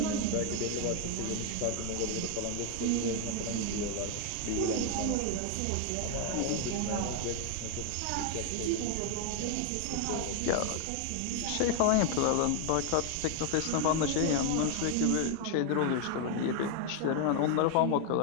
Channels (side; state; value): both; different; correlation 0.00